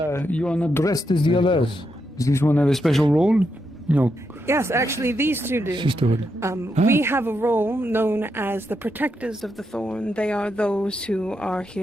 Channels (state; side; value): normal; both; correlation 0.82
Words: are not dressed as the others. Does this one have a special role? No, Yes, actually, these two do. sisterhood. We have a role known as the protectors of the thorn. They are those who are